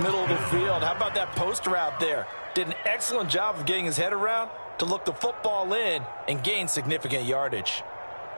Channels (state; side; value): inverted; both; correlation -1.00